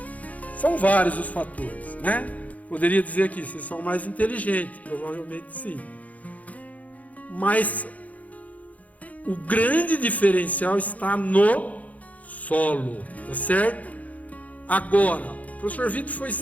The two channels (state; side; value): late; right; 0.072 ms